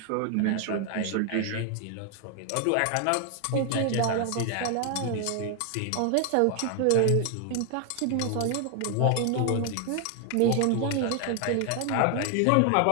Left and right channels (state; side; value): different; both; correlation 0.00